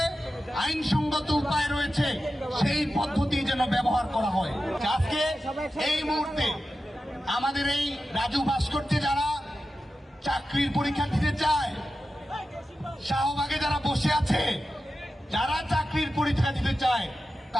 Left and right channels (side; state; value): both; normal; correlation 0.92